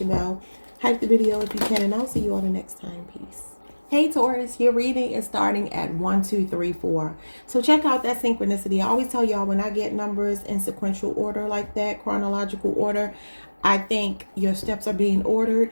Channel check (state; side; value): inverted; both; correlation -1.00